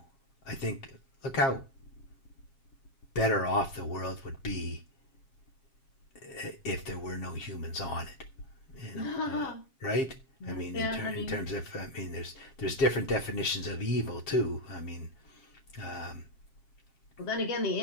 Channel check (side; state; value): right; late; 7.4 ms